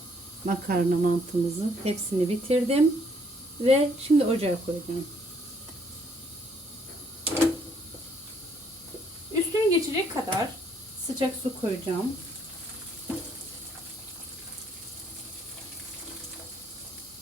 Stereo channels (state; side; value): normal; both; correlation 0.67